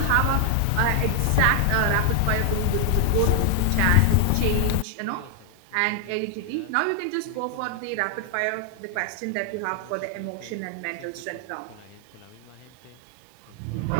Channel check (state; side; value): different; both; correlation 0.00